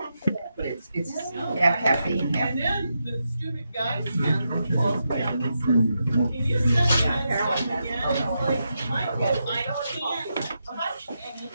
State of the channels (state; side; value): inverted; both; correlation -0.85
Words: But it's half caffeine, half.